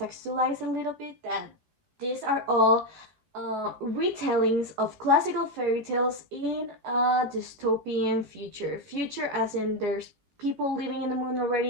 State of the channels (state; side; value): late; left; 14 ms